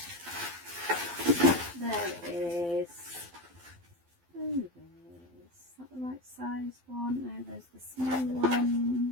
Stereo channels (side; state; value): left; late; 12 ms